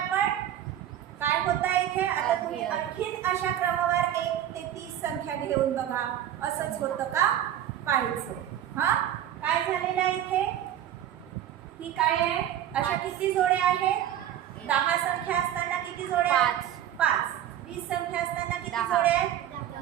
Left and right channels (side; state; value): left; quieter; 11.2 dB